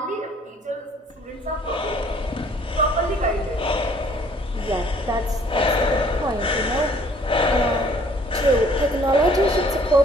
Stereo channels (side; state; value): both; normal; correlation 0.58